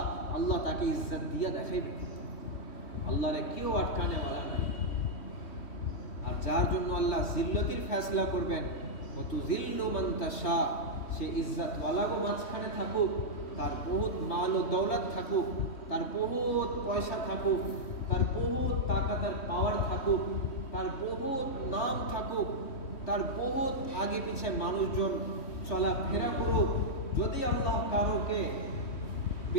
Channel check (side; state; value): right; late; 3.1 ms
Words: আল্লাহ তাকে ইজ্জত দিয়া দেখাইবেন। আল্লাহরে কেউ আটকানেওয়ালা নাই। আর যার জন্য আল্লাহ জিল্লতির ফয়সলা করবেন, ওয়াতুযিল্লু মান তাশা, সে ইজ্জতওয়ালাগো মাঝখানে থাকুক, তার বহুত মাল ও দৌলত থাকুক, তার বহুত পয়সা থাকুক, তার বহুত তাকাত আর পাওয়ার থাকুক, তার বহুত নাম থাকুক, তার বহুত আগে পিছে মানুষজন চলাফেরা করুক, যদি আল্লাহ কারোকে